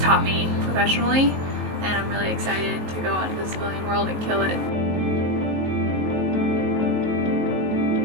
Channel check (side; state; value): left; late; 19 ms